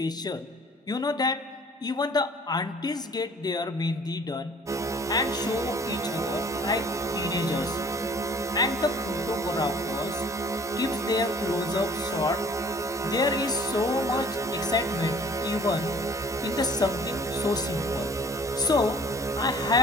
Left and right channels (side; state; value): both; normal; correlation 0.52